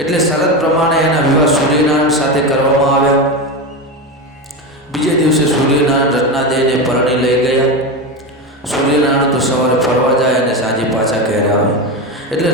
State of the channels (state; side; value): normal; both; correlation 0.18